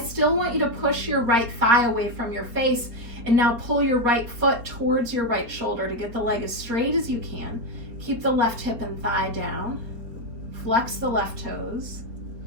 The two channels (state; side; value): late; left; 4.1 ms